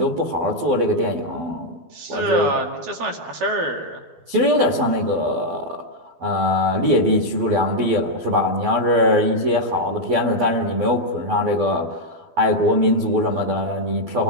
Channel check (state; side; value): late; left; 12 ms